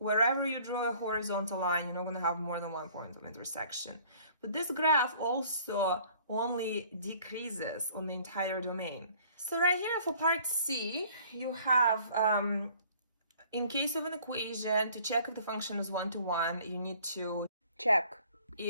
you draw a horizontal line, you're not going to have more than one point of intersection. But this graph also only decreases on the entire domain. So right here for part C, you have, in case of an equation, to check if the function is one-to-one, you need to check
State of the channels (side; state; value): both; inverted; correlation -0.55